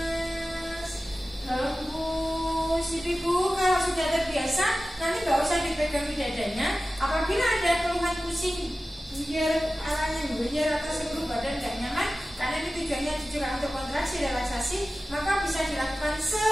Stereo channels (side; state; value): both; normal; correlation 0.95